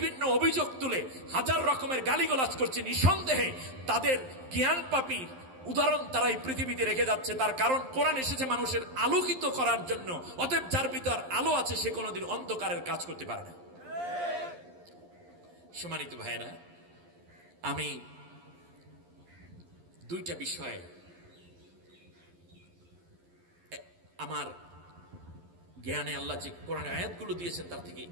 অভিযোগ তুলে হাজার রকমের গালিগালাজ করছে, নিঃসন্দেহে তাদের জ্ঞান পাপীর উদাহরণ তারা এই পৃথিবীতে রেখে যাচ্ছে। তার কারণ কোরআন এসেছে মানুষের আলোকিত করার জন্য। অতএব যার ভিতর আলো আছে সে কোনোদিন অন্ধকারের কাজ করতে পারে না। সম্মানিত ভাইয়েরা, আমি দুইটা বিষয়ে আমার জ্ঞানে আল্লাহ যে কোরআনের আয়াতগুলো দিয়েছেন তার থেকে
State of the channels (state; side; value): late; left; 11 ms